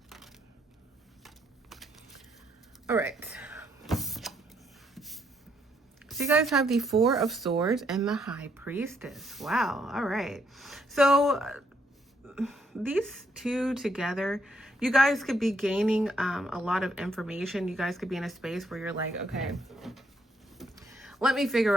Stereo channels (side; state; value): both; normal; correlation 0.73